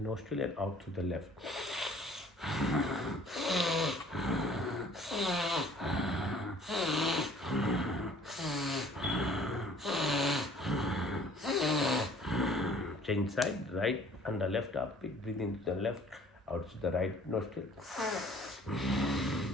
and out through the left. Change side, right under left armpit, breathe into the left, out to the right nostril.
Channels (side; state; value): both; normal; correlation 0.54